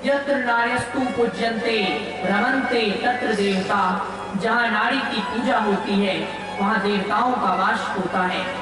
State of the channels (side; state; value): both; identical; correlation 1.00